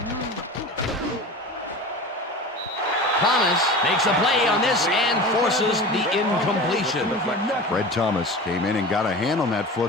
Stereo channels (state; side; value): normal; both; correlation 0.33